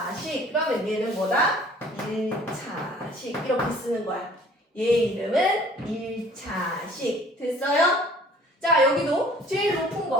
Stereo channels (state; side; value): normal; both; correlation 0.53